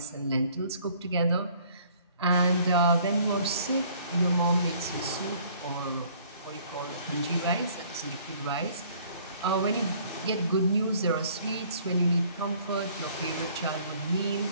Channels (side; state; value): both; inverted; correlation -0.58